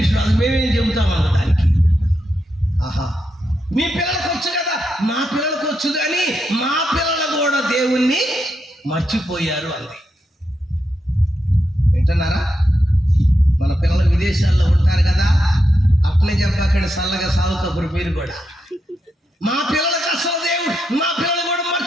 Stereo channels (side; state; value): both; normal; correlation 0.84